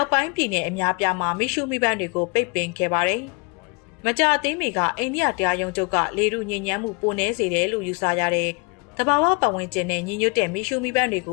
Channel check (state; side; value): quieter; right; 30.6 dB